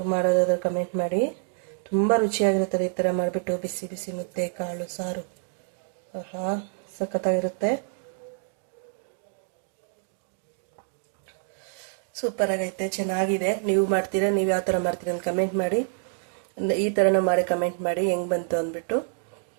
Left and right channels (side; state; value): left; silent; digital silence